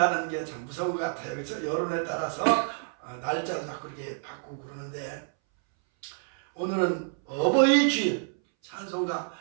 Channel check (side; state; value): left; silent; 59 dB below the other